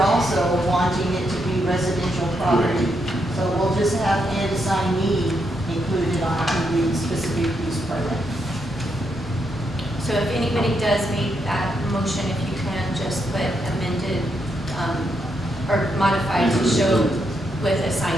also wanting it to be residential property. So we'll just have and assignee included on the specific use permit. So if anybody does make that motion, if you can just put amended or modified to show with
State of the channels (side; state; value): both; normal; correlation 0.80